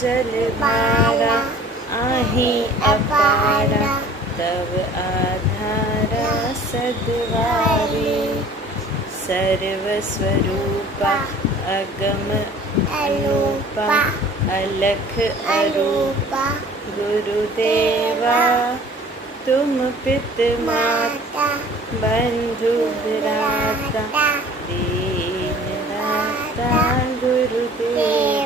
भारा आही अपारा तव आधारा सद्वारी सर्वस्वरूपा अगम अनूपा अलख अरूपा गुरुदेवा तुम पित माता बंधु भ्राता दीन दाता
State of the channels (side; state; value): both; normal; correlation 0.48